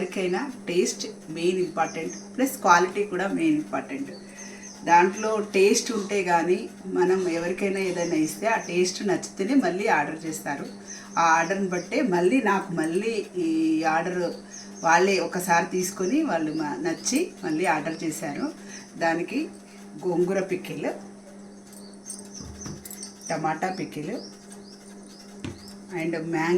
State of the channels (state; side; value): identical; both; correlation 1.00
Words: taste main important, plus quality కూడా మెయిన్ ఇంపార్టెంట్. దాంట్లో టేస్ట్ ఉంటే కానీ మనం ఎవరికైనా ఏదైనా ఇస్తే ఆ టేస్ట్ నచ్చితేనే మళ్ళీ ఆర్డర్ చేస్తారు. ఆ ఆర్డర్ని బట్టే మళ్ళీ ఈ ఆర్డర్ వాళ్ళే ఒకసారి తీసుకొని వాళ్ళు నచ్చి మళ్ళీ ఆర్డర్ చేశారు. దానికి గోంగూర pickle, tomato pickle and